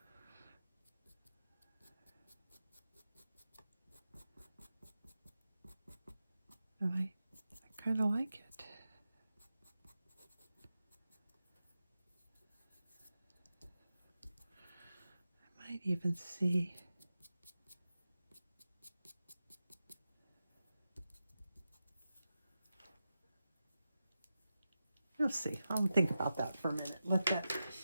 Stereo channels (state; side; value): inverted; both; correlation -0.91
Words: And I kind of like it. I might even see we'll see. I'll think about that for a minute. I'm